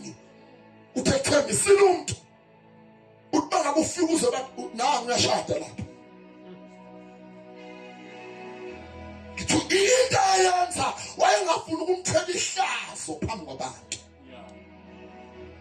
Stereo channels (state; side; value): identical; both; correlation 1.00